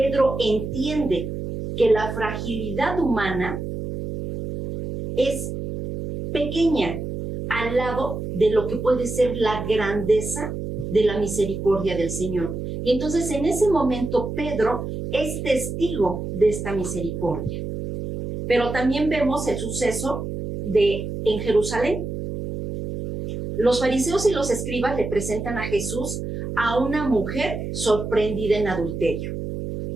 entiende que la fragilidad humana es pequeña al lado de lo que puede ser la grandeza de la misericordia del Señor. Y entonces en ese momento Pedro es testigo de esta misericordia. Pero también vemos el suceso en Jerusalén. Los fariseos y los escribas le presentan a Jesús a una mujer sorprendida en adulterio.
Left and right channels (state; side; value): noise; right; hum, 6 dB below the sound